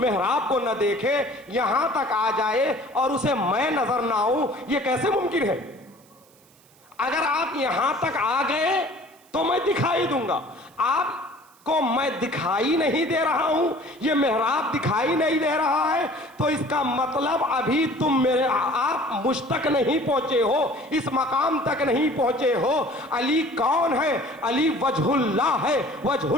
کو نہ دیکھے، یہاں تک آ جائے اور اسے میں نظر نہ آؤں. یہ کیسے ممکن ہے؟ اگر آپ یہاں تک آ گئے تو میں دکھائی دوں گا. آپ کو میں دکھائی نہیں دے رہا ہوں، یہ محراب دکھائی نہیں دے رہا ہے، تو اس کا مطلب ابھی آپ مجھ تک نہیں پہنچے ہو، اس مقام تک نہیں پہنچے ہو. علی کون ہے؟ علی وجہ اللہ ہے. وجہ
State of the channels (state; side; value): noise; right; hiss, 29 dB below the sound